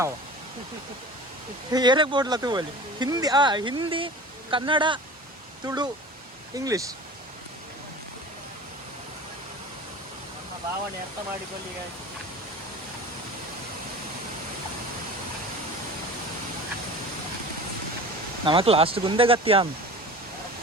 ಆವ ಏರಕ್ ಬೋಡ್ಲ ತೂವಲ್ಲಿ ಹಿಂದಿ ಕನ್ನಡ ತುಳು ಇಂಗ್ಲಿಷ್ ಭಾವನೆ ಅರ್ಥ ಮಾಡಿಕೊಳ್ಳಿ ನಮಕ್ ಲಾಸ್ಟ್ ಗುಂದೆ ಗತ್ಯ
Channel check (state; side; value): normal; both; correlation 0.38